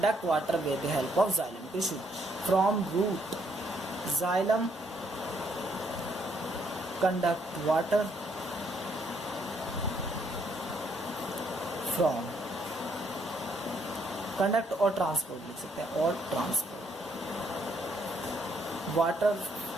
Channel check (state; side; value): normal; both; correlation 0.71